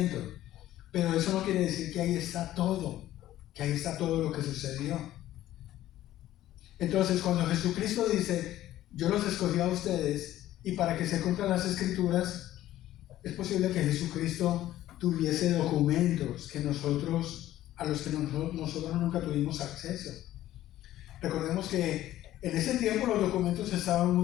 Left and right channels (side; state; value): right; quieter; 13.9 dB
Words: Pero eso no quiere decir que ahí está todo lo que sucedió. Entonces, cuando Jesucristo dice, yo los escogí a ustedes, y para que se cumplan las escrituras, es posible que Jesucristo tuviese documentos a los que nosotros nunca tuvimos acceso. Recordemos que en ese tiempo los documentos estaban